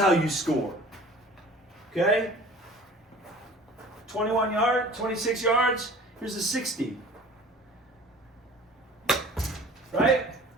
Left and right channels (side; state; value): both; normal; correlation 0.45